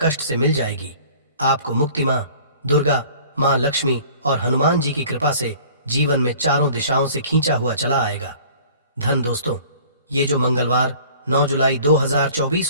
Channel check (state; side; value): inverted; both; correlation -0.49